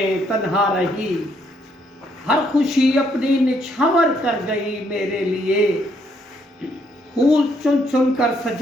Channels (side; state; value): both; normal; correlation 0.71